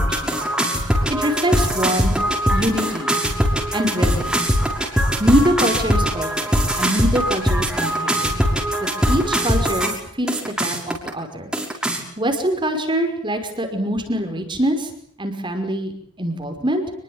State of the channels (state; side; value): normal; both; correlation 0.67